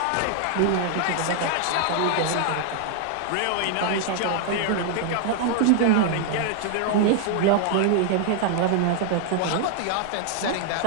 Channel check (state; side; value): different; both; correlation 0.00